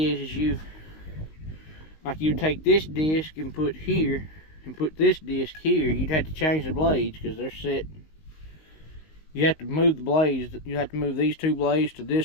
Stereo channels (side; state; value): right; late; 19 ms